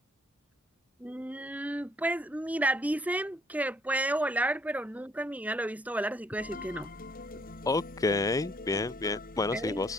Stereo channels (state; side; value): normal; both; correlation 0.65